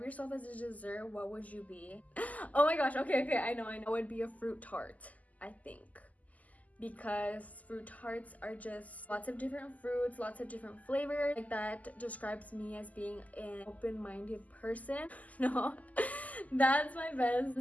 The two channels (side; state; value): right; late; 0.076 ms